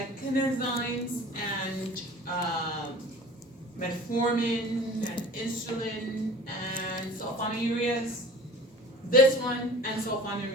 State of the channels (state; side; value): normal; both; correlation 0.42